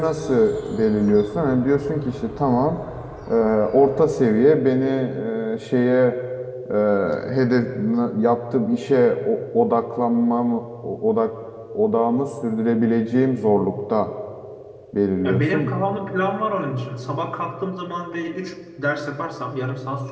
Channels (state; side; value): identical; both; correlation 1.00